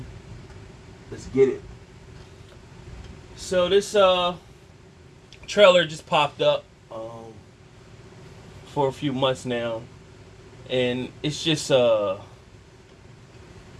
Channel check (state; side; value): identical; both; correlation 1.00